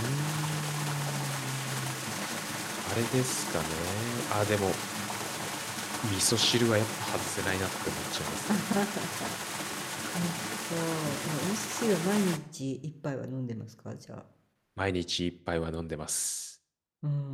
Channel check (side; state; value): both; identical; correlation 1.00